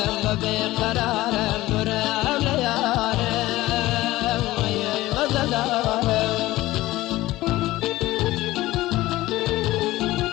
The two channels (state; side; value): quieter; right; 17.4 dB